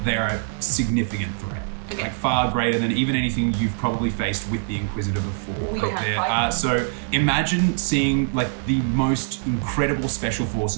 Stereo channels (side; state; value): left; silent; digital silence